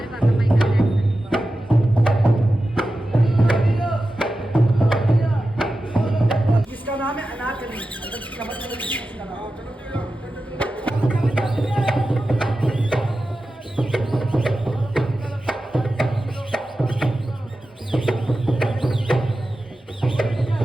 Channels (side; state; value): both; normal; correlation 0.93